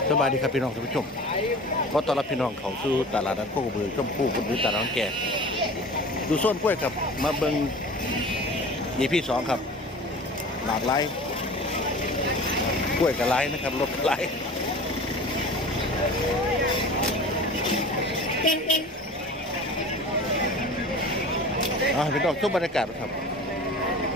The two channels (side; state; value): both; normal; correlation 0.39